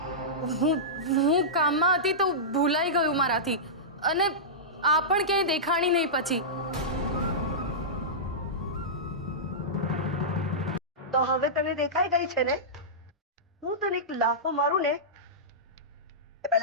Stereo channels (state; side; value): normal; both; correlation -0.15